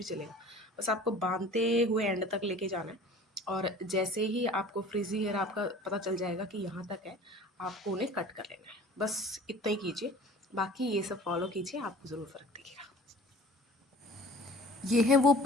चलेगा, बस आपको बांधते हुए एंड तक लेके जाना है। और जैसे ही आपको फ्रिजी हेयर आपका पता चल जाएगा कि यहाँ तक है, आपको उन्हें कट कर लेना है। बस इतना ही कीजिए, बाकी ये सब फॉलो कीजिए, आपको ज़रूर फ़र्क दिखेगा। ये हैं वो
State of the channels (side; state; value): both; normal; correlation 0.45